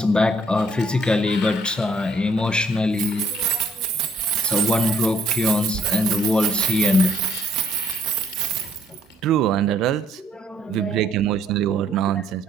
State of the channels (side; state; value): both; normal; correlation 0.65